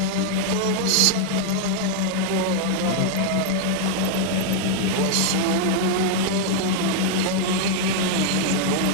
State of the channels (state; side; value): different; both; correlation 0.00